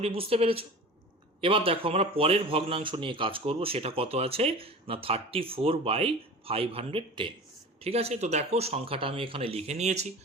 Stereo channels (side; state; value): both; normal; correlation 0.35